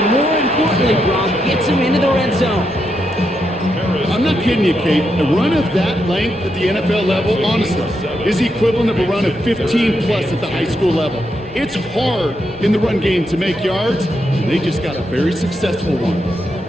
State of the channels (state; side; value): normal; both; correlation 0.82